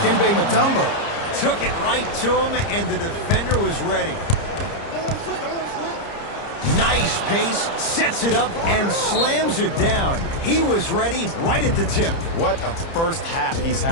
Mutombo. Took it right to him, and the defender was ready. Nice pace, sets it up, and slams it down. He was ready right at the tip. What a first half he's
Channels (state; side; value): late; right; 30 ms